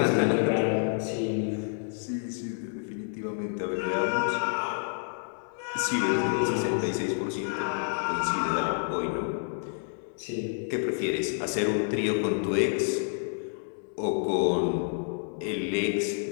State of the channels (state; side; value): silent; right; 59 dB below the other